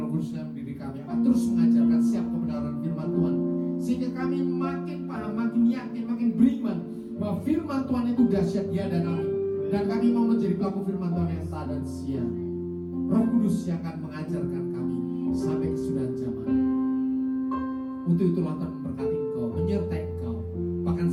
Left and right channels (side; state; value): both; identical; correlation 1.00